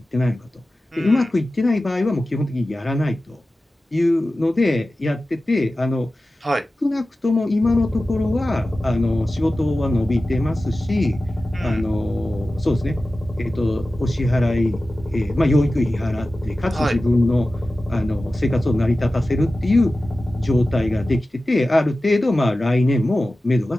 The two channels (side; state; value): both; normal; correlation 0.95